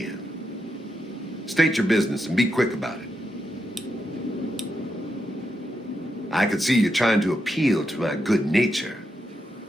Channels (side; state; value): both; normal; correlation 0.84